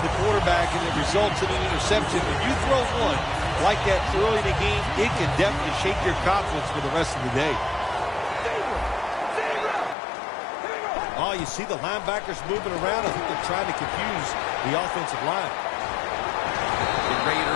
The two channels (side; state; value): right; drops out; at 10.0 s